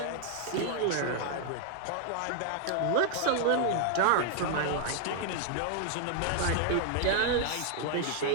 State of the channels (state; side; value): different; both; correlation 0.00